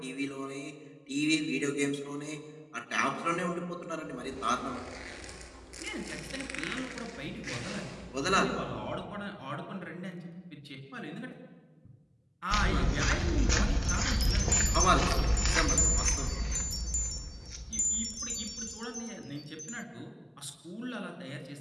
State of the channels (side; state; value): both; identical; correlation 1.00